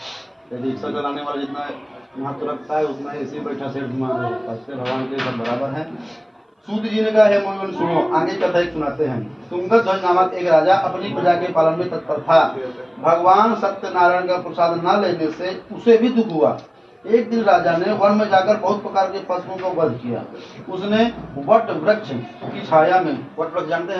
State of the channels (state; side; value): identical; both; correlation 1.00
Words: यदि रिक्शा चलाने वाला जितना महत्व रखता है उतना ऐसे बैठा सेठ भगवान के लिए सब बराबर है। सूत जी ने कहा है मोहन सुनो, आगे कथा एक सुनाते हैं। तुंगत ध्वज नामक एक राजा अपनी प्रजा के पालन में तत्पर था। भगवान सत्यनारायण का प्रसाद न लेने से उसे भी दुख हुआ। एक दिन राजा ने वन में जाकर बहुत प्रकार के पशुओं का वध किया। उसने वट वृक्ष की छाया में, वट वृक्ष जानते